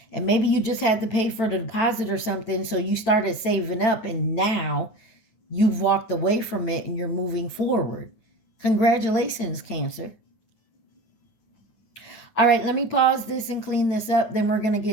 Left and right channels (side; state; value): right; late; 8.9 ms